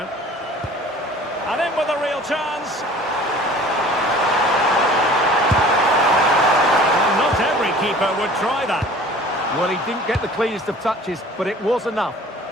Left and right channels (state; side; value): normal; both; correlation 0.47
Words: And in with a real chance. Well, not every keeper would try that. Well, he didn't get the cleanest of touches, but it was enough.